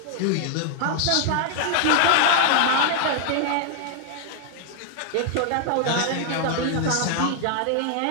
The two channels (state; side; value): different; both; correlation 0.00